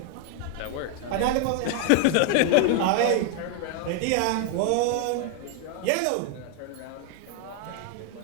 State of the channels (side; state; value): both; different; correlation 0.00